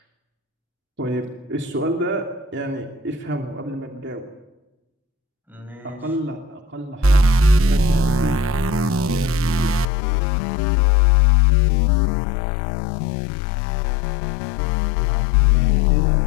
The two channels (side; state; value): right; drops out; at 9.9 s